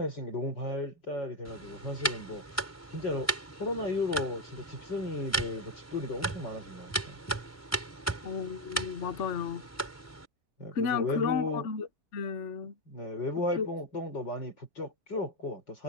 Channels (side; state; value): both; normal; correlation 0.05